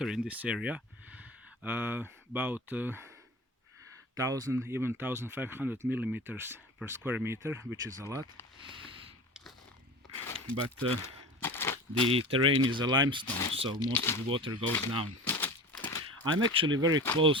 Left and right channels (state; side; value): normal; both; correlation 0.35